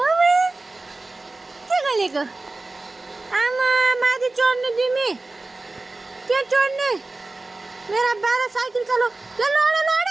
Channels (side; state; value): left; quieter; 3.2 dB